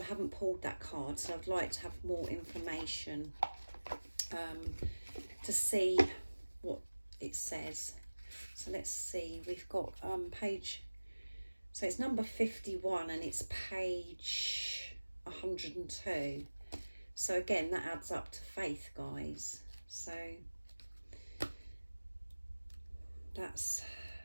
haven't pulled that card, so I'd like to have more information to see what it says. So let's see, we've got page, so it's number 51 and it's page 102. So again, that adds up to faith, guys. So that's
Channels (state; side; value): inverted; both; correlation -1.00